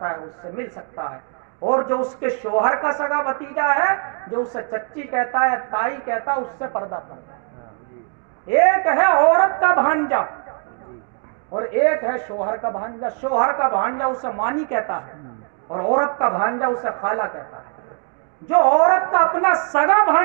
ہے، اس سے مل سکتا ہے، اور جو اس کے شوہر کا سگا بھتیجا ہے، جو اسے چچی کہتا ہے، تائی کہتا ہے، اس سے پردہ فرض ہے۔ ایک ہے عورت کا بھانجا اور ایک ہے شوہر کا بھانجا۔ شوہر کا بھانجا اسے مانی کہتا ہے، اور عورت کا بھانجا اسے خالہ کہتا ہے۔ جو عورت کا اپنا سگا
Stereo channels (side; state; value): left; quieter; 38.8 dB